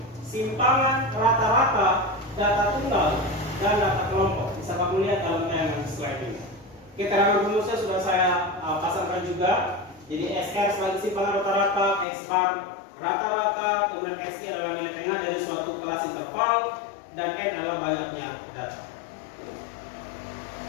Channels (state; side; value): drops out; right; at 12.1 s